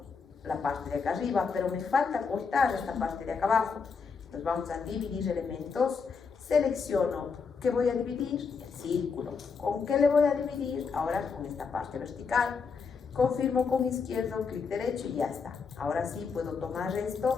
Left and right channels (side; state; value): right; quieter; 5.3 dB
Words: la parte de acá arriba, pero me falta cortar esta parte de acá abajo. Entonces vamos a dividir elementos, selecciono ¿qué voy a dividir? El círculo. ¿Con qué le voy a dividir? Ahora con esta parte vertical. Confirmo con izquierdo, clic derecho y ya está. Ahora sí puedo tomar